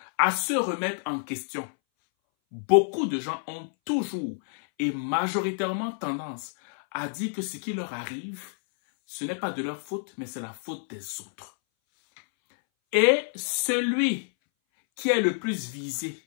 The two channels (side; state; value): right; silent; 59 dB below the other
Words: à se remettre en question. Beaucoup de gens ont toujours et majoritairement tendance à dire que ce qui leur arrive, ce n'est pas de leur faute, mais c'est la faute des autres. Et celui qui est le plus visé,